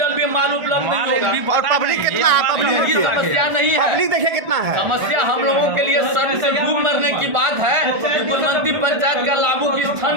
भी माल उपलब्ध नहीं होगा। और पब्लिक कितना है, पब्लिक की समस्या नहीं है, पब्लिक देखिए कितना है। समस्या हम लोगों के लिए सर से डूब मरने की बात है कि गुलमंती पंचायत का लाभू की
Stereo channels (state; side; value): late; left; 1.4 ms